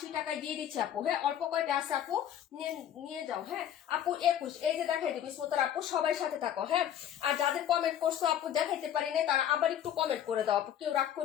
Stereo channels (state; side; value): quieter; right; 10.3 dB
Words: টাকায় দিয়ে দিচ্ছি আপু। হ্যাঁ অল্প কয়টা আছে আপু, নিয়ে নিয়ে যাও। হ্যাঁ আপু 21, এই যে দেখাই দিবি স্মোতার আপু, সবাই সাথে থাকো। হ্যাঁ আর যাদের কমেন্ট করছো আপু দেখাইতে পারি না, তারা আবার একটু কমেন্ট করে দাও আপু, কেউ রাগ